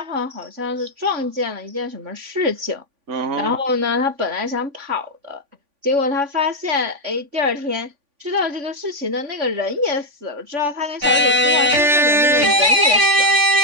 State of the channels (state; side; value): late; left; 3.5 ms